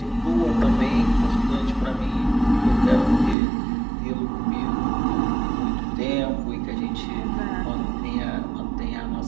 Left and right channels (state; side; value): drops out; left; at 3.4 s